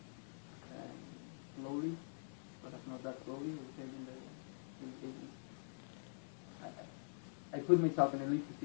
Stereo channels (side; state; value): right; silent; digital silence